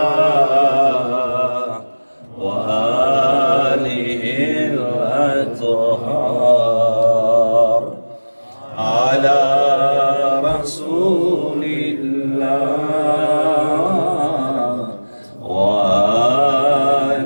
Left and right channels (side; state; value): both; inverted; correlation -1.00